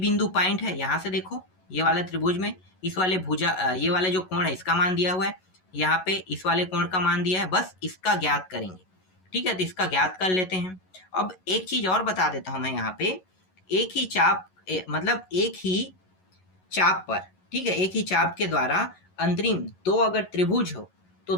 पॉइंट है, यहाँ से देखो ये वाला त्रिभुज में इस वाले भुजा ये वाले जो कोण है इसका मान दिया हुआ है, यहाँ पे इस वाले कोण का मान दिया है, बस इसका ज्ञात करेंगे। ठीक है, तो इसका ज्ञात कर लेते हैं। अब एक चीज और बता देता हूं मैं, यहाँ पे एक ही चाप मतलब एक ही चाप पर, ठीक है, एक ही चाप के द्वारा अंतरिम दो अगर त्रिभुज हो तो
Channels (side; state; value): right; late; 11 ms